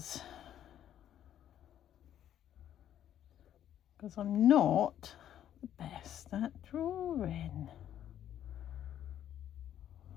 I'm not the best at drawing.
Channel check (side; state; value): right; quieter; 10.8 dB